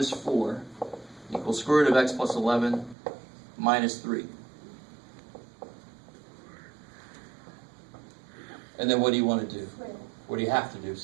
4 equals square root of x plus 11 minus 3. And then what do you want to do? What do you have to do?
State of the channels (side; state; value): left; drops out; at 3.0 s